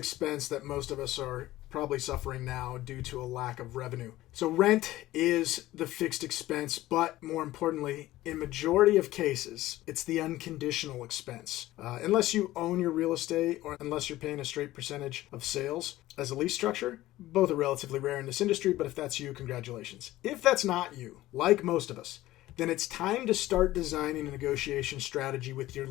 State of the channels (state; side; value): quieter; right; 16.2 dB